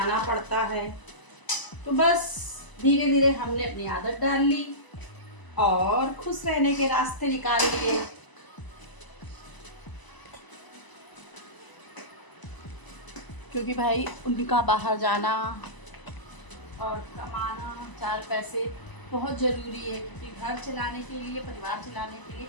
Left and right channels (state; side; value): late; right; 1.0 ms